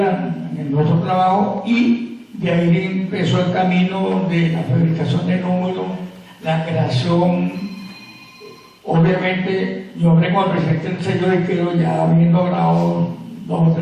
en nuestro trabajo y de ahí empezó el camino de la fabricación de números, la creación. Obviamente, yo hablé con el presidente del sello de Quero, ya habiendo grabado 2 o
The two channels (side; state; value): both; identical; correlation 1.00